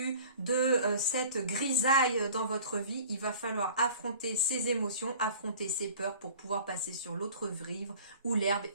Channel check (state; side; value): inverted; both; correlation -0.46